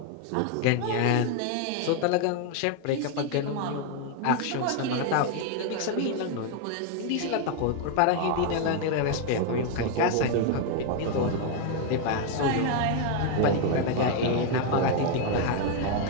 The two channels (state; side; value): different; both; correlation 0.00